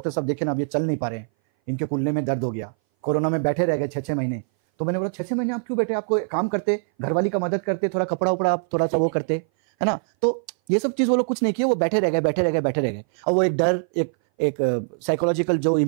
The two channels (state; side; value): silent; left; 59 dB below the other